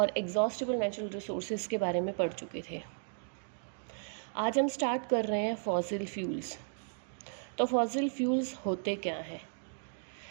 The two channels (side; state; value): left; silent; digital silence